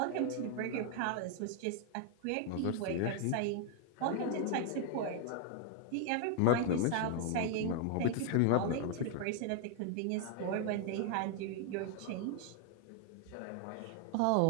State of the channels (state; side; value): different; both; correlation 0.00